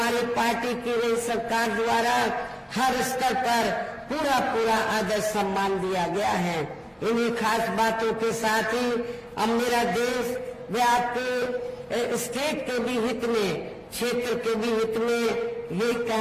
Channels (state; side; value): identical; both; correlation 1.00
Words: पार्टी की नई सरकार द्वारा हर स्तर पर पूरा पूरा आदर सम्मान दिया गया है। इन्हीं खास बातों के साथ ही अब मेरा देश व आपके स्टेट के भी हित में, क्षेत्र के भी हित में यही